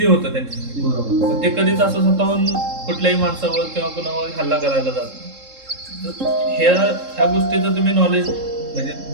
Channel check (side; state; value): left; late; 3.7 ms